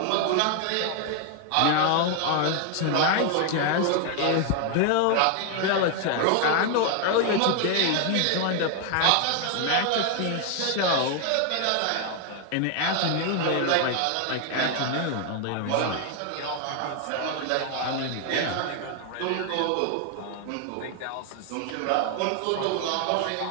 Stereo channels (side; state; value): both; different; correlation 0.00